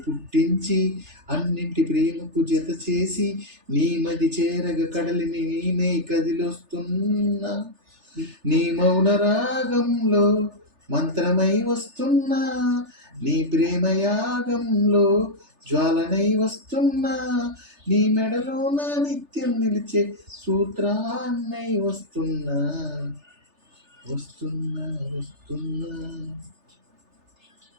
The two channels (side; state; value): left; late; 3.3 ms